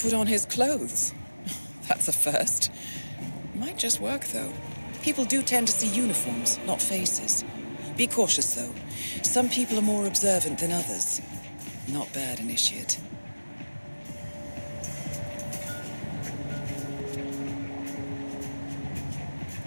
on his clothes. That's a first. Might just work, though. People do tend to see uniforms, not faces. Be cautious, though. Some people are more observant than others. Not bad, Initiate.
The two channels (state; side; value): inverted; both; correlation -1.00